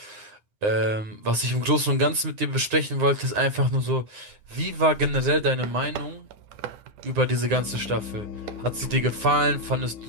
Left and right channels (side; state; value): left; late; 9.6 ms